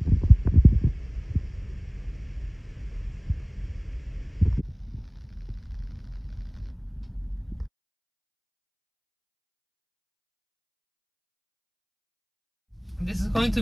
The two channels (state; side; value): identical; both; correlation 1.00